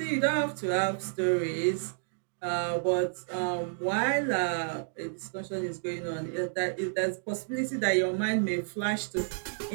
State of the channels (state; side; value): silent; left; digital silence